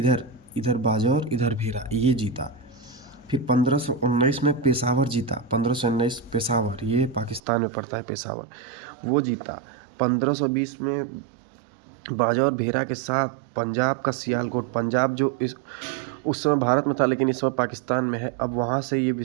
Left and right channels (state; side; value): drops out; left; at 7.4 s